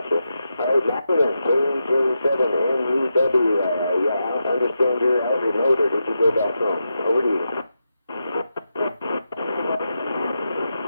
you. All right, Madeline, KJ7MUW. Yeah, I understand you're out remote, or did you go back home? Over to you.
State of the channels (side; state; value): both; inverted; correlation -0.87